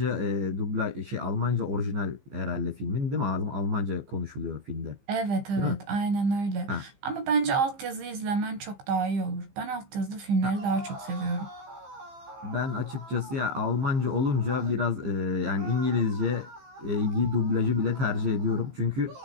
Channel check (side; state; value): left; late; 15 ms